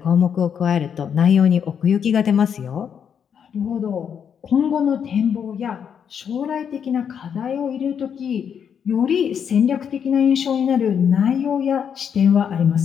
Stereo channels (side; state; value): right; quieter; 7.7 dB